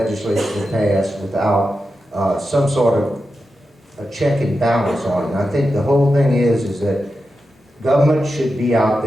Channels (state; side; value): normal; both; correlation 0.90